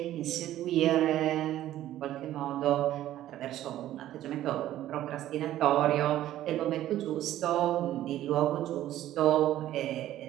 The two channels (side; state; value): left; quieter; 13.3 dB